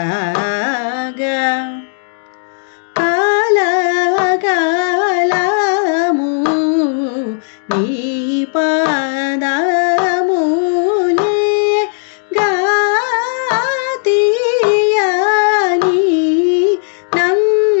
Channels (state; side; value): silent; right; 70 dB below the other